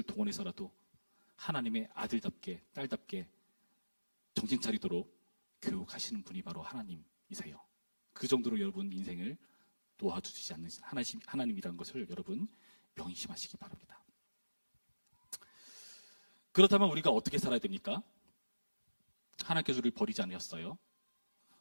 동원해서라도 하나님의 아들답게 딸답게 정신 차리도록 교육하시는 분이 바로 하나님이세요. 그 정도로 여러분 인생을 놓아주시지 않는 하나님이라는 것을 여러분 명심하시기 바랍니다. 그렇다면 우리가 어떻게 살아야 됩니까? 하나님께서 우리를 버리지 않으셨어요.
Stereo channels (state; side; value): inverted; both; correlation -1.00